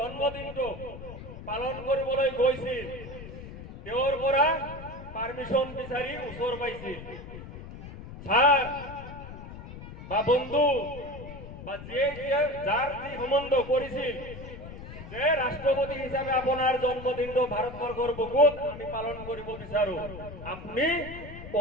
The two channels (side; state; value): left; noise; rumble, 12 dB below the sound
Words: পালন কৰিবলৈ গৈছিল তেওঁৰ পৰা পাৰমিশন বিচাৰি ওচৰ পাইছিল ছাৰ বা বন্ধু বা যাৰ যি সম্বন্ধ কৰিছিল যে ৰাষ্ট্ৰপতি হিচাপে আপোনাৰ জন্মদিনটো ভাৰতবৰ্ষৰ বুকুত আমি পালন কৰিব বিচাৰো আপুনি